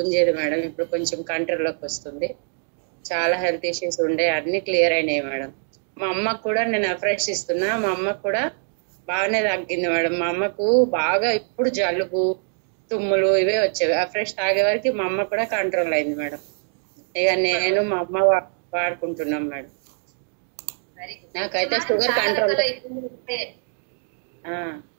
మేడం, ఇప్పుడు కొంచెం కంట్రోల్లోకి వస్తుంది. చాలా హెల్త్ ఇష్యూస్ ఉండే, అన్ని క్లియర్ అయినాయి మేడం. మా అమ్మకు కూడా నేను అఫ్రెష్ ఇస్తున్నా, మా అమ్మకు కూడా బాగానే తగ్గింది మేడం. మా అమ్మకు బాగా ఇప్పుడు జలుబు, తుమ్ములు ఇవే వచ్చేవి. అఫ్రెష్ తాగే వరకు మా అమ్మ కూడా కంట్రోల్ అయింది మేడం. ఇక నేను మా అమ్మ వాడుకుంటున్నాం మేడం. నాకైతే షుగర్ కంట్రోల్.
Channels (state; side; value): silent; left; 63 dB below the other